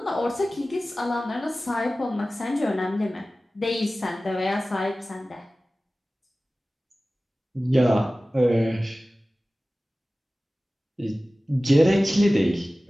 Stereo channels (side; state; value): both; normal; correlation 0.97